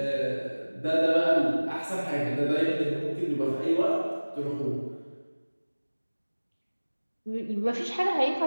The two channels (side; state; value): both; inverted; correlation -1.00